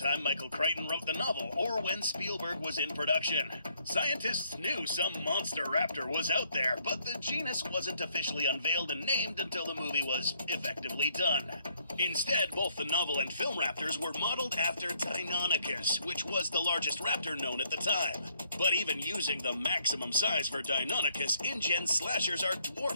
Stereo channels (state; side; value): inverted; both; correlation -0.69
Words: Michael Crichton wrote the novel or when Spielberg was in production. Scientists knew some monster raptor was out there, but the genus wasn't officially unveiled and named until the movie was effectively done. Instead, both the novel and film raptors were modeled after Deinonychus, which was the largest raptor known at the time. But even using the maximum size for Deinonychus, InGen slashers are